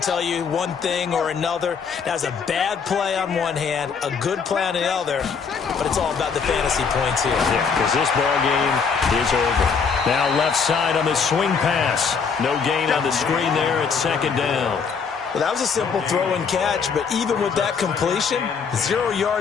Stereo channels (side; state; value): right; quieter; 5.9 dB